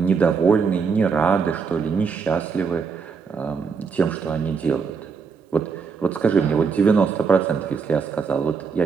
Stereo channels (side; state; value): left; quieter; 5.6 dB